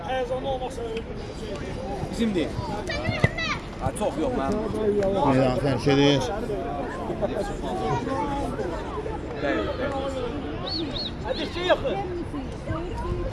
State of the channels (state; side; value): identical; both; correlation 1.00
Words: Bizim değil. Ha, çok yok lan. Meydan tərk edir.